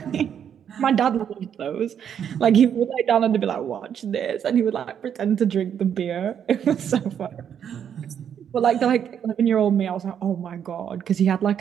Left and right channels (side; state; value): left; quieter; 8.6 dB